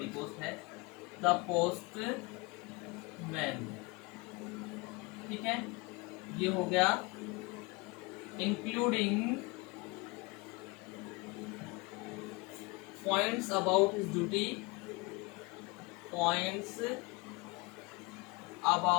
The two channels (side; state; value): right; quieter; 25.7 dB